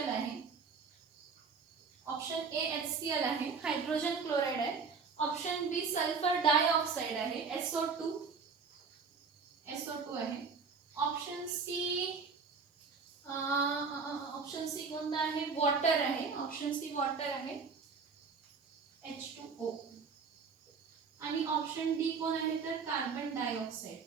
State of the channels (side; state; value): left; quieter; 5.2 dB